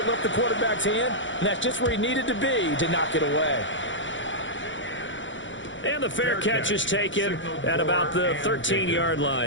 left the quarterback's hand, and that's just where he needed to be to knock it away. And the fair catch is taken at about the 13-yard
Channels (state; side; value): late; right; 0.55 ms